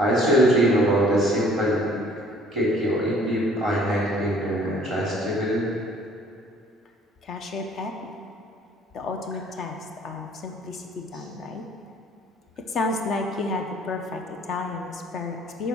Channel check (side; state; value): both; normal; correlation 0.56